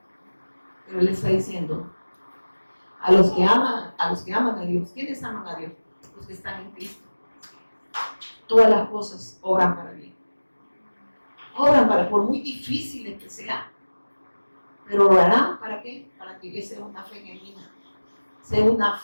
Pero él está diciendo, a los que aman a Dios, ¿quiénes aman a Dios? Los que están en Cristo. Todas las cosas obran para bien. Obran para, por muy difíciles que sean, pero obrarán ¿para qué? Para que sea una fe genuina, sea una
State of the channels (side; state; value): both; inverted; correlation -1.00